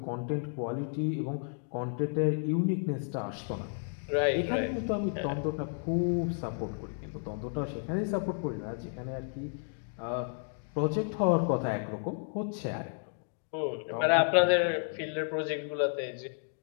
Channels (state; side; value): silent; right; 56 dB below the other